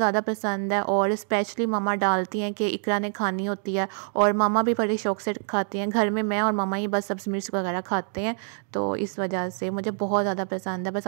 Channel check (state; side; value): silent; left; 58 dB below the other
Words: पसंद है और स्पेशली मामा डालती हैं कि इकरा ने खानी होती है और मामा भी बड़े शौक से खाती हैं। घर में मैं और मामा ही बस सब्ज़ मिर्च वगैरह खाते हैं, तो इस वजह से मुझे बहुत ज़्यादा पसंद है। बस